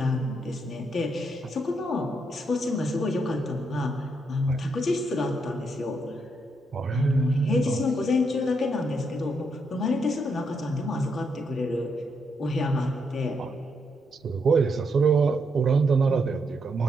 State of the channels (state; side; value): normal; both; correlation 0.78